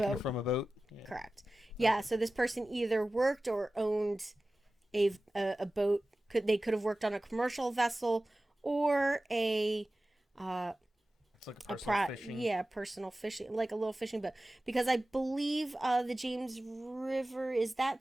it from a boat. Yeah. Correct. Yeah. So this person either worked or owned a boat. They could have worked on a commercial vessel or a It's like a personal fishing. yeah, personal fishing, like a little fishing boat, because I believe the James River, is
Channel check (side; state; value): both; normal; correlation 0.96